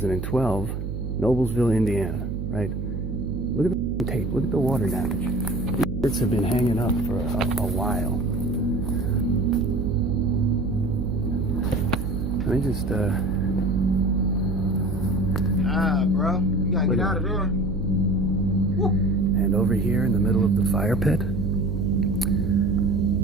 Noblesville, Indiana, right? Look at the tape. Look at the water damage. These birds have been hanging up for a while. Let me just, Nah, bro. You gotta get out of there. Woo. And over here in the middle of the fire pit,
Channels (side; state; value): right; noise; hum, 5 dB below the sound